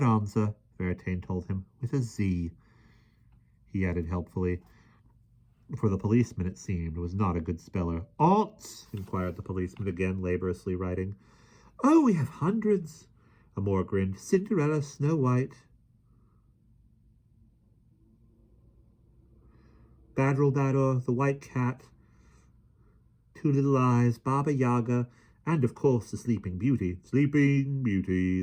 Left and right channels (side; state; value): both; identical; correlation 1.00